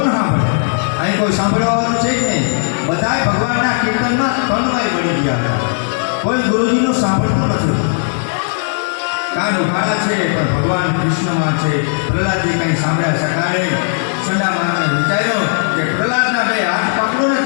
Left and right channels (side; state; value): right; silent; digital silence